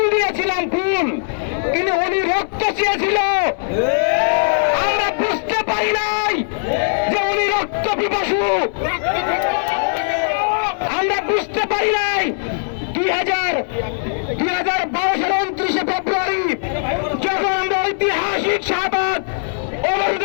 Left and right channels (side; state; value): right; silent; 62 dB below the other